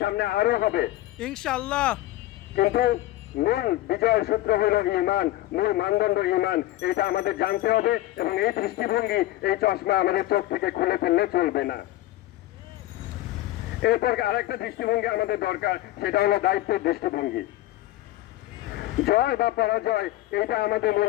আরো হবে ইনশাআল্লাহ, কিন্তু মূল বিজয়ের সূত্র হইল ঈমান, মূল মানদণ্ড ঈমান। এটা আমাদের জানতে হবে এবং এই দৃষ্টিভঙ্গি, এই চশমা আমাদের চোখ থেকে খুলে ফেললে চলবে না। এরপর আরেকটা দৃষ্টিভঙ্গি আমাদের দরকার, সেটা হলো দায়িত্বের দৃষ্টিভঙ্গি। জয় বা পরাজয় এটা আমাদের মূল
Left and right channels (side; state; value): right; quieter; 15.9 dB